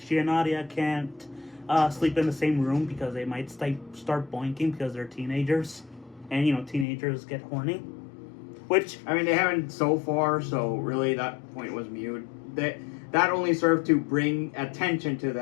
she and Nadia can't sleep in the same room because they might start boinking because they're teenagers. And, you know, teenagers get horny. Which... I mean, they haven't so far, so really that point was mute. That only served to bring attention to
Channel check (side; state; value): right; drops out; at 6.9 s